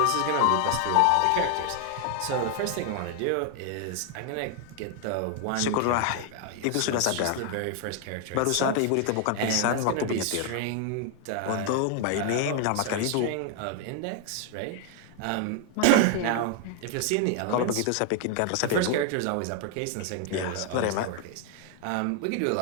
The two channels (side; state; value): both; different; correlation 0.00